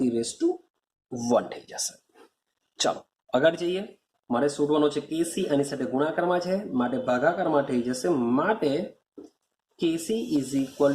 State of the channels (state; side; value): identical; both; correlation 1.00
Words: થઈ જશે. ચાલો આગળ જઈએ. મારે શોધવાનો છે કેસી, આની સાથે ગુણાકારમાં છે માટે ભાગાકારમાં થઈ જશે. માટે KC is equal